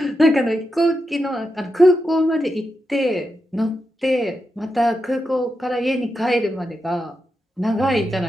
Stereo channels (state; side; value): normal; both; correlation 0.87